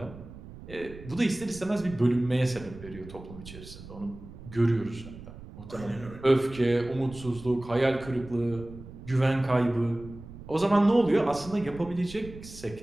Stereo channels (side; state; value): right; noise; rumble, 15 dB below the sound